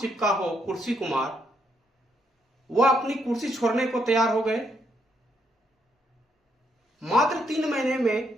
हो कुर्सी कुमार, वह अपनी कुर्सी छोड़ने को तैयार हो गए। मात्र 3 महीने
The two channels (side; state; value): both; normal; correlation 0.75